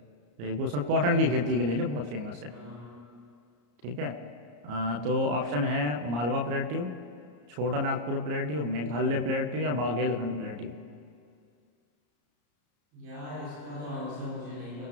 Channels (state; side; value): late; left; 34 ms